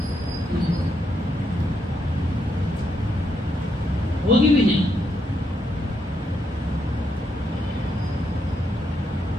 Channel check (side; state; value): both; normal; correlation 0.79